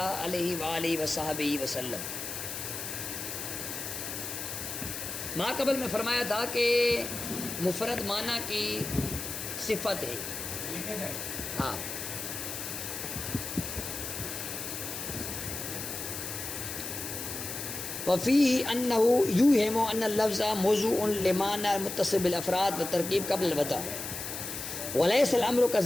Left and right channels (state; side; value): noise; left; hiss, 6 dB below the sound